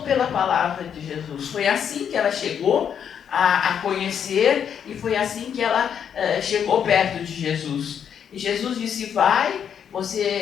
pela palavra de Jesus. Foi assim que ela chegou a conhecer, e foi assim que ela chegou perto de Jesus. E Jesus disse: vai,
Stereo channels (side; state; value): right; quieter; 8.2 dB